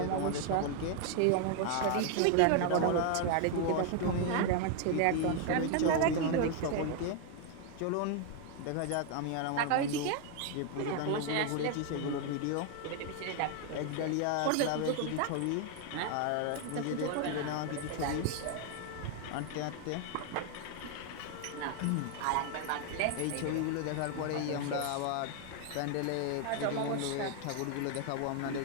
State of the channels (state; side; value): different; both; correlation 0.00